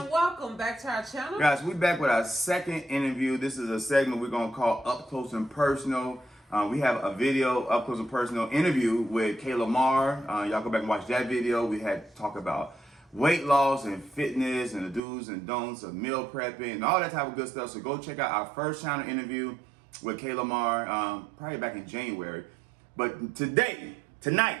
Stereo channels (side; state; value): left; drops out; at 15.0 s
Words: welcome back to our channel. Guys, we back with our second interview. This is a segment we're going to call Up Close and Personal. We have a video, Up Close and Personal interview with Kayla Marr. Y'all go back and watch that video. We had talk about weight loss and fitness and the do's and don'ts of meal prepping and all that type of good stuff. So go check out our first channel interview with Kayla Marr, probably back in January. But tonight,